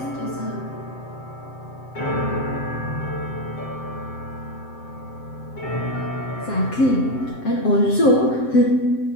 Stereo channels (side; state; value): right; late; 7.7 ms